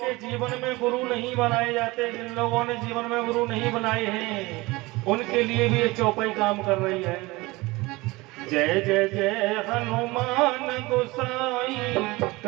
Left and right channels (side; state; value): left; quieter; 22.0 dB